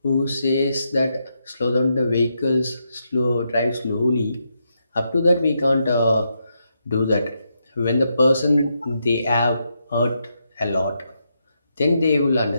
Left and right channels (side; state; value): both; inverted; correlation -0.82